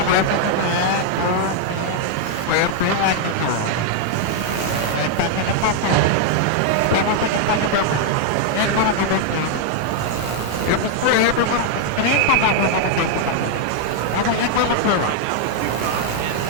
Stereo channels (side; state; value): both; different; correlation 0.00